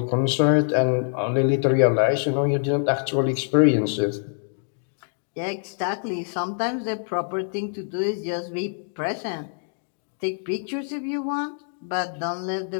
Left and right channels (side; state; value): right; silent; 62 dB below the other